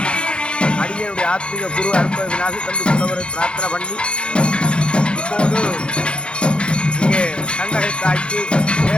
அடியனுடைய ஆத்மீக குரு அற்ப விநாசி தந்து புலவரை பிரார்த்தனை பண்ணி இப்போது இங்கே கண்ணகை தாய்க்கு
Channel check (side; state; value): right; late; 0.056 ms